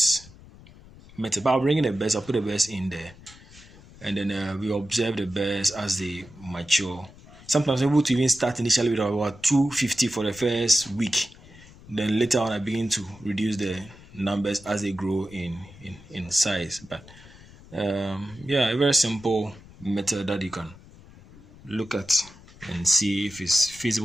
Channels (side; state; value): left; noise; rumble, 21 dB below the sound